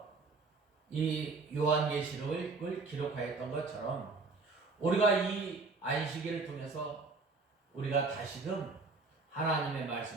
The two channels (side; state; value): left; quieter; 4.0 dB